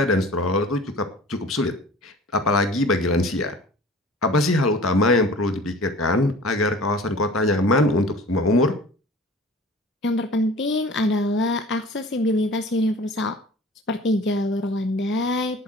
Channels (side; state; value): both; normal; correlation 0.43